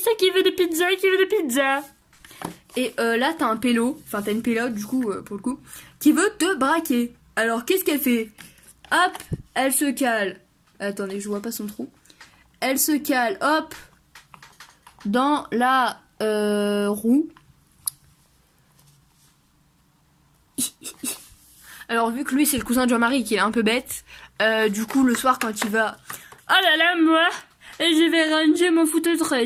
qui veut des pizzas, qui veut des pizzas. Et là t'as un pélo, enfin t'as une pélote du coup, pour le coup, qui veut te braquer. Alors qu'est-ce qu'elle fait? Hop, elle se cale. Attendez, je vois pas son trou. Elle se cale, hop, dans la roue. Alors vu que lui c'est le cousin de Jean-Marie qui est un peu bête, du coup le soir quand il va... Oh là là moi, et je vais ranger mon food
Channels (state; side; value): identical; both; correlation 1.00